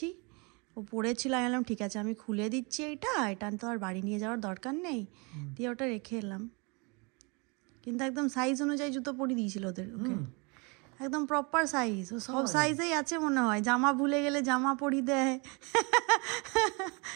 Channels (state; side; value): quieter; left; 30.6 dB